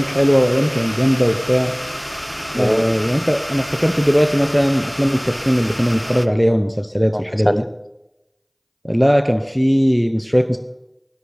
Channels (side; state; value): both; identical; correlation 1.00